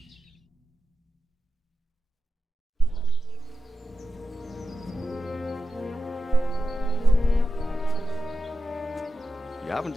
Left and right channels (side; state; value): both; normal; correlation 0.90